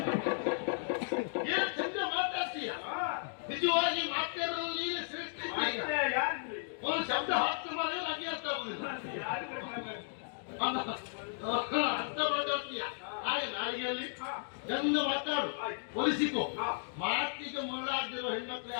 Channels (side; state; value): right; silent; digital silence